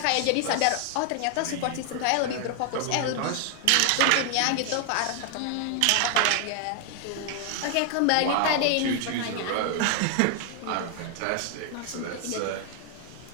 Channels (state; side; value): different; both; correlation 0.00